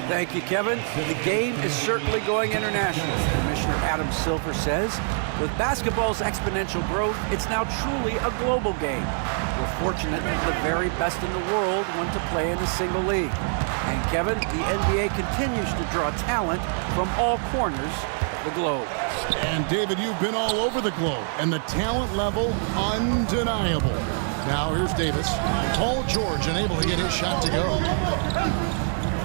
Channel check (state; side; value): silent; left; 60 dB below the other